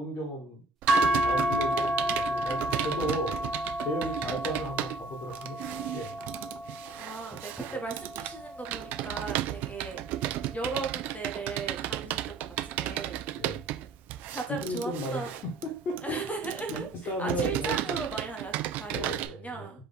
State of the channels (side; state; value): left; quieter; 3.3 dB